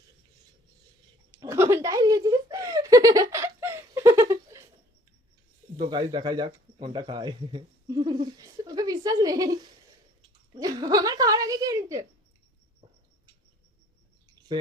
কোনটাই দিয়েছিস তো গাইস দেখাই যাক কোনটা খায়। ওকে বিশ্বাস নেই আমার খাওয়ার আগে কে নিচ্ছে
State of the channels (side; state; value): both; normal; correlation 0.57